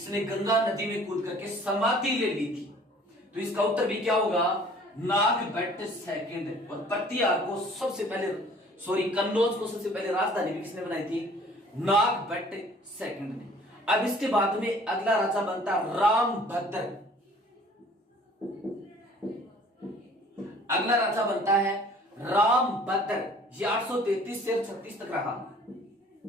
गंगा नदी में कूद करके समाधि ले ली थी, तो इसका उत्तर भी क्या होगा? नागभट्ट सेकंड। और प्रतिहार को सबसे पहले, कन्नौज को सबसे पहले राजधानी भी किसने बनाई थी? नागभट्ट सेकंड ने। अब इसके बाद में अगला राजा बनता रामभद्र। अगला राजा बनता है रामभद्र। ये 833 से 36 तक रहा।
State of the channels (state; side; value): normal; both; correlation 0.53